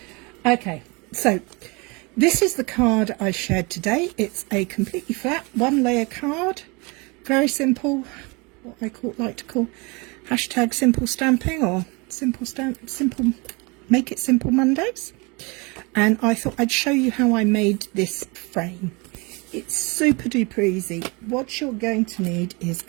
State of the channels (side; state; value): left; quieter; 28.1 dB